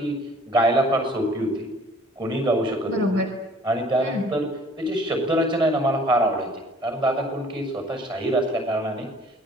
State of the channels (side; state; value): both; normal; correlation 0.54